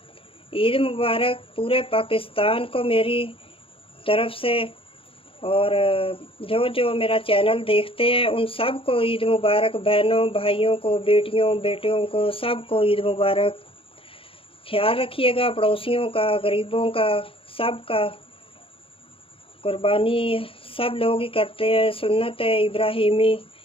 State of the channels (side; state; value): right; late; 0.26 ms